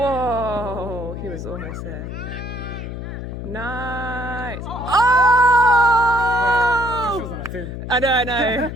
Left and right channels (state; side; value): noise; left; hum, 7 dB below the sound